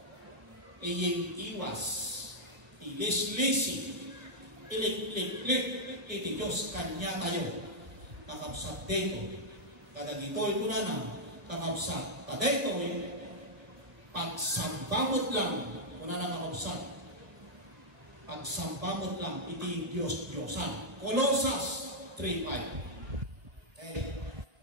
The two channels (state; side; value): late; left; 1.3 ms